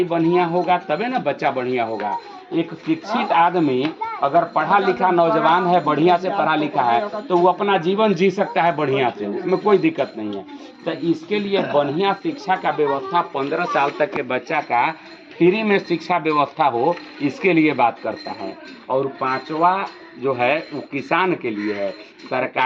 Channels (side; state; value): both; identical; correlation 1.00